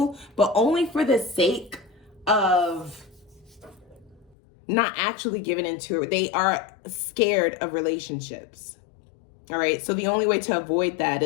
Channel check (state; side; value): drops out; right; at 4.4 s